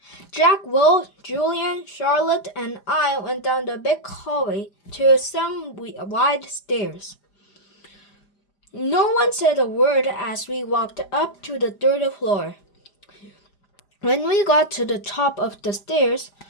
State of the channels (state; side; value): late; right; 5.0 ms